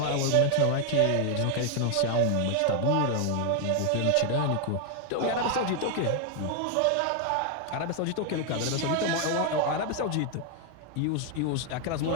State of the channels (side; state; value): both; different; correlation 0.00